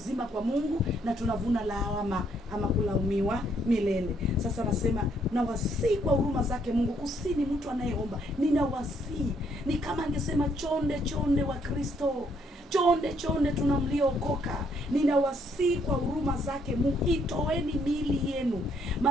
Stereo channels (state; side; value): normal; both; correlation 0.70